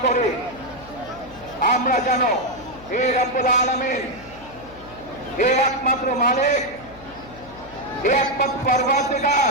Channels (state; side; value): noise; left; hum, 21 dB below the sound